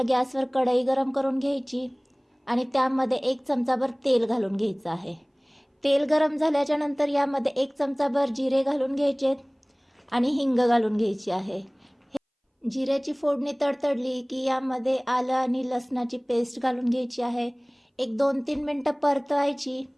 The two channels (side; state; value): both; identical; correlation 1.00